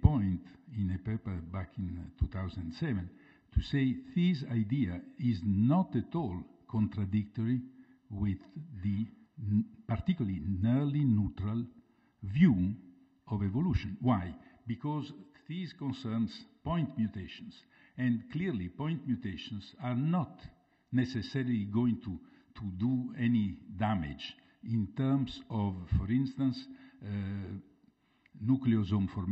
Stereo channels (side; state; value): both; identical; correlation 1.00